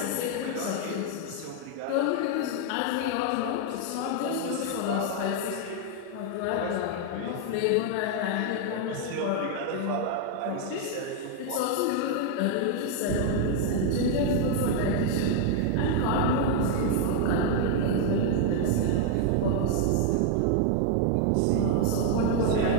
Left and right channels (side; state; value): both; different; correlation 0.00